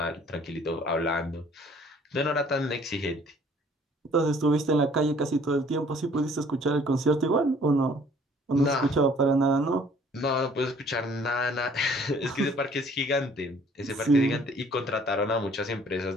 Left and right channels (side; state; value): both; normal; correlation 0.56